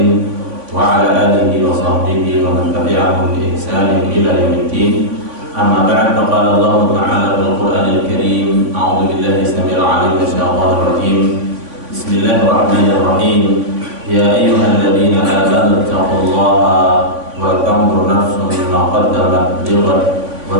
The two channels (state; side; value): late; left; 3.5 ms